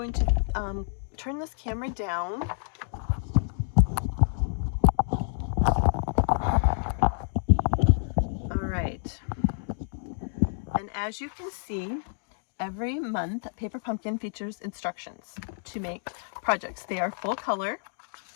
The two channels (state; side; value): silent; right; digital silence